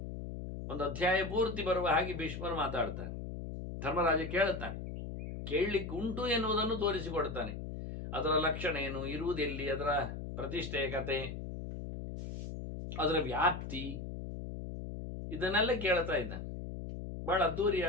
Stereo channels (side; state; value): left; noise; hum, 7 dB below the sound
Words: ಒಂದು ಅಧ್ಯಾಯ ಪೂರ್ತಿ ಬರುವ ಹಾಗೆ ಭೀಷ್ಮರು ಮಾತಾಡ್ತಾರೆ. ಧರ್ಮರಾಜ ಕೇಳುತ್ತಾನೆ, ಕೇಳಲಿಕ್ಕೆ ಉಂಟು ಎನ್ನುವುದನ್ನು ತೋರಿಸಿಕೊಡ್ತಾನೆ. ಅದರ ಲಕ್ಷಣ ಏನು, ಇರುವುದೆಲ್ಲಿ, ಅದರ ಪ್ರತಿಷ್ಠೆಯ ಕತೆ, ಅದರ ವ್ಯಾಪ್ತಿ, ಇದನ್ನೆಲ್ಲ ಕೇಳ್ತಾ ಇದ್ದಾನೆ. ಬಹಳ